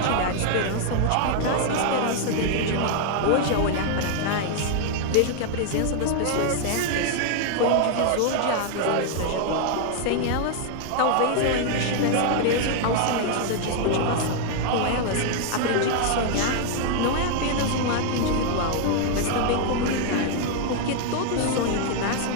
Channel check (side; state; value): both; different; correlation 0.00